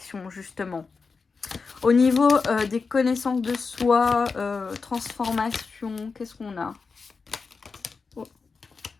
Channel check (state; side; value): quieter; right; 4.7 dB